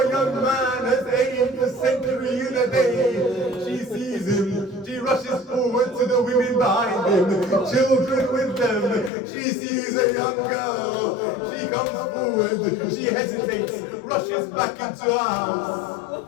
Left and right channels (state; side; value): drops out; right; at 9.1 s